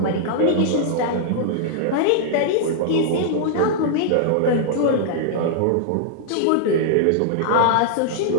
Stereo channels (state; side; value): different; both; correlation -0.01